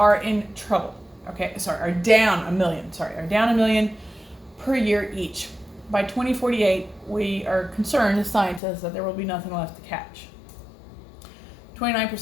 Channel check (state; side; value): drops out; right; at 8.6 s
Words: in trouble, okay? Are down $1 million per year each. By 2048, we are concerned as scientists that there will be nothing left to catch. 29%